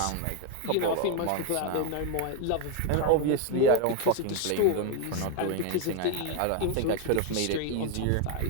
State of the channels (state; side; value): different; both; correlation 0.01